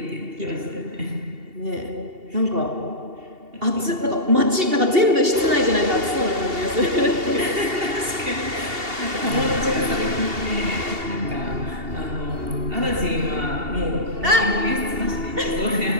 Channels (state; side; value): late; left; 2.8 ms